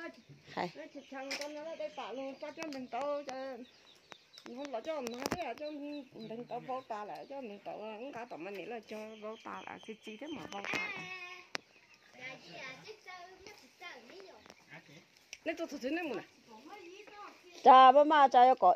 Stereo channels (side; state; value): both; identical; correlation 1.00